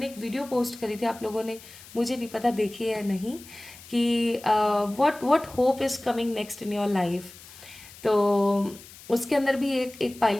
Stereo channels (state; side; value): noise; left; hiss, 19 dB below the sound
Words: एक वीडियो पोस्ट करी थी, आप लोगों ने, मुझे नहीं पता देखी है या नहीं, कि what hope is coming next in your life. तो उसके अंदर भी एक